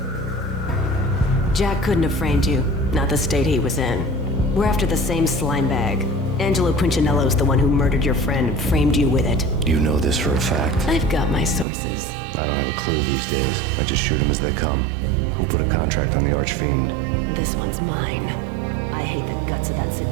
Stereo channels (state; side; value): drops out; left; at 11.7 s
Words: Jack couldn't have framed you. Not the state he was in. We're after the same slime bag. Angelo Punchinello's the one who murdered your friend and framed you with it. You know this for a fact. I've got my sources. I don't have a clue these days. I just shoot them as they come. Who put a contract on the Archfiend? This one's mine. I hate the guts of that